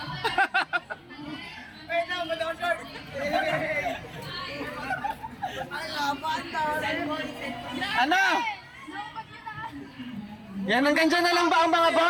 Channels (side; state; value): both; identical; correlation 1.00